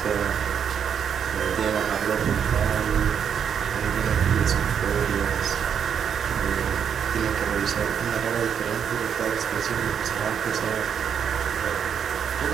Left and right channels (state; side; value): quieter; left; 7.8 dB